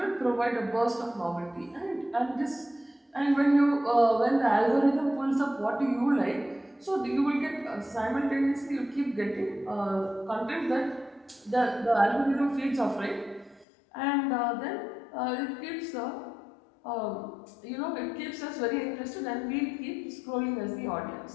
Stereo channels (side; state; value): right; drops out; at 13.7 s